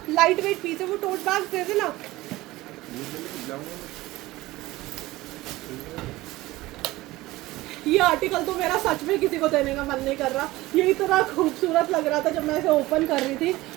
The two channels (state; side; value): quieter; left; 18.6 dB